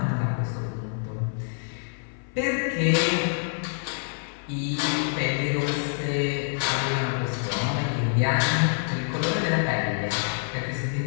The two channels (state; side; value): silent; right; 56 dB below the other